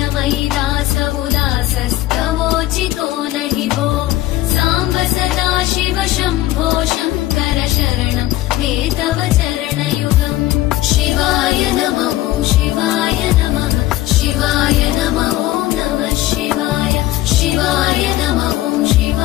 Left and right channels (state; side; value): quieter; right; 15.8 dB